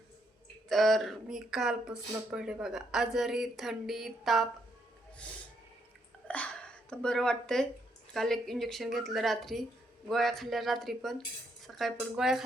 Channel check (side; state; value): both; normal; correlation 0.75